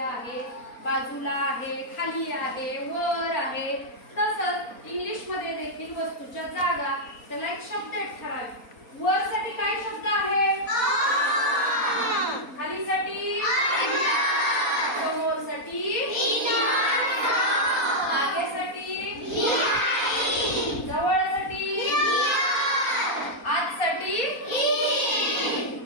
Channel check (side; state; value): right; late; 4.3 ms